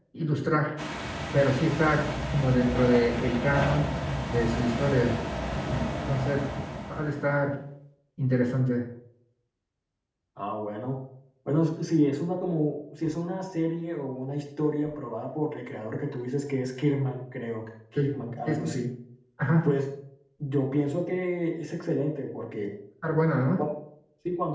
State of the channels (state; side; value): identical; both; correlation 1.00